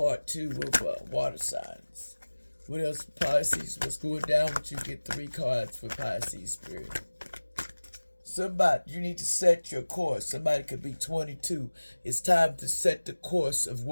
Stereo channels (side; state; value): both; inverted; correlation -1.00